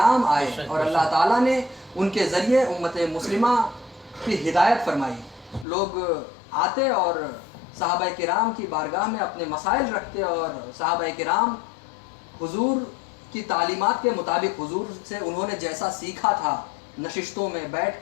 آئے اور اللہ تعالیٰ نے ان کے ذریعے امت مسلمہ کی ہدایت فرمائی. لوگ آتے اور صحابہ کرام کی بارگاہ میں اپنے مسائل رکھتے اور صحابہ کرام حضور کی تعلیمات کے مطابق حضور سے انہوں نے جیسا سیکھا تھا، نشستوں میں بیٹھ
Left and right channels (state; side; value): drops out; right; at 5.7 s